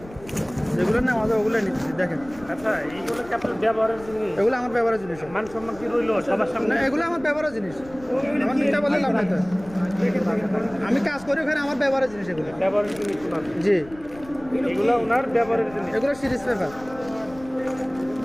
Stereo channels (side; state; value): left; noise; rumble, 20 dB below the sound